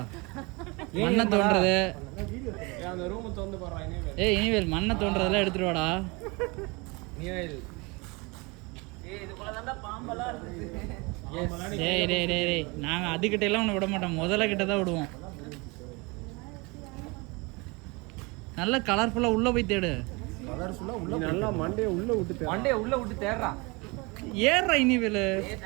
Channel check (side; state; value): left; quieter; 27.1 dB